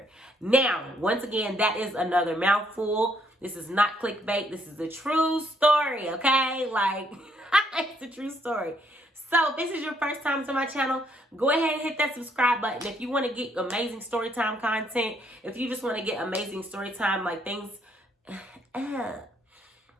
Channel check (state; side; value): normal; both; correlation 0.70